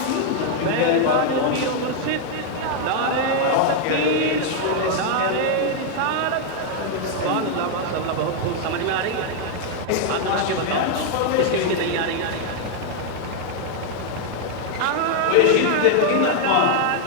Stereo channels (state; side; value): different; both; correlation 0.00